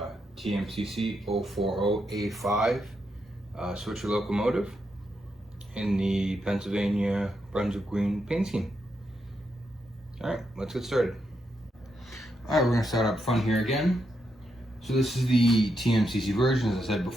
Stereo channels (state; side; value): normal; both; correlation 0.82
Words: TMCC 040A5 Swithcer locomotive in the Pennsylvania Brunswick Green paint scheme. Alright, let's get started. Alright, we're going to start up front here again. So this is the TMCC version, as I said